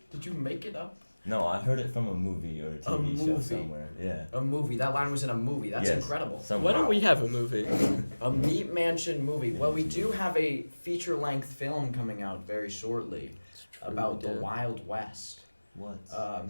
Did you make it up? No, I heard it from a movie or a TV show movie. somewhere. Yeah. A movie. That line was in a movie. That's Yes. incredible. Why don't we have a movie? A Meat Mansion movie. Well, we do have a feature-length film coming out very shortly about the Wild West. What?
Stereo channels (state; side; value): inverted; both; correlation -1.00